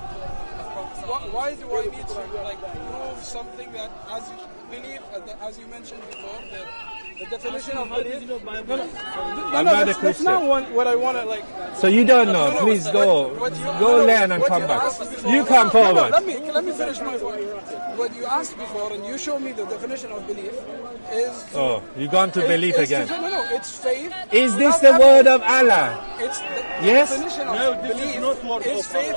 Why do I need to prove something that, as you believe, as you mentioned before, that the definition of belief? I'm not a That's Christian. not what I want to So you don't know. Please go learn and come back. You come forward. Let me finish my point. What you asked before, and you showed me the definition of belief, is. Oh, you gone to belief is again. No, it's faith. Is this without the word evidence. of Allah? It's the Yes? definition of belief is faith.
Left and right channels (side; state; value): both; inverted; correlation -1.00